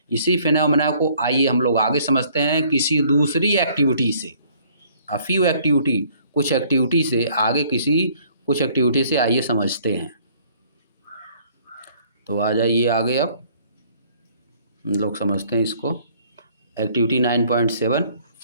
इसी फेनोमेना को आइए हम लोग आगे समझते हैं किसी दूसरी एक्टिविटी से। अ फ्यू एक्टिविटी, कुछ एक्टिविटी से आगे, कुछ एक्टिविटी से आइए समझते हैं। तो आ जाइए आगे, अब हम लोग समझते हैं इसको। Activity 9.7,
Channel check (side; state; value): both; inverted; correlation -0.60